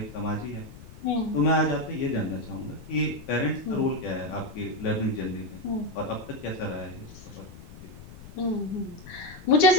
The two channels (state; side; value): noise; left; rumble, 17 dB below the sound